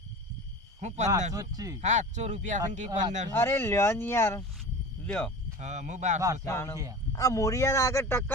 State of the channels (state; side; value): normal; both; correlation 0.34